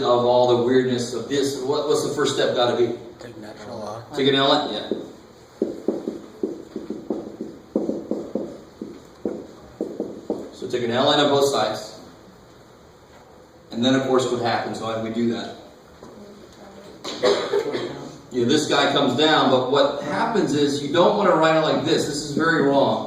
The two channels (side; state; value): both; identical; correlation 1.00